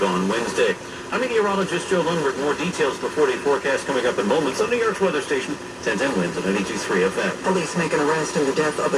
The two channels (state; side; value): identical; both; correlation 1.00